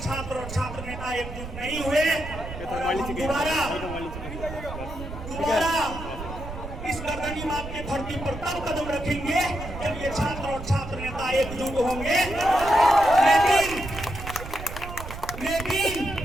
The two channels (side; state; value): right; noise; rumble, 10 dB below the sound